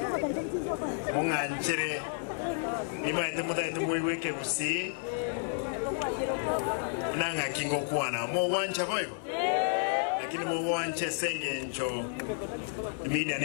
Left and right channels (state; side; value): silent; right; digital silence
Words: Munganchere imaite mutaite muiweke kusi nanga kingo kuana mo wancha boyo lakini mo wanche senge njo imida